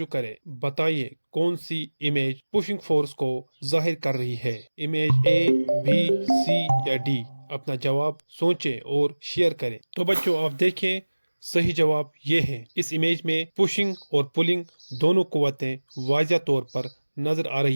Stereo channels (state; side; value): inverted; both; correlation -1.00